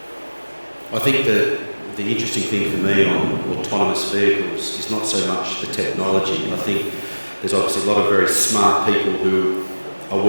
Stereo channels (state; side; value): inverted; both; correlation -1.00